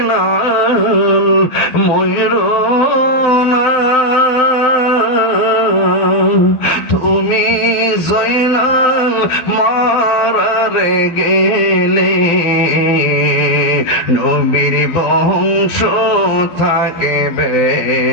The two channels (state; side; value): late; right; 12 ms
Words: ময়ূরো না, তুমি জয়নাল মারারে গেলে নবীর বংশ থাকবে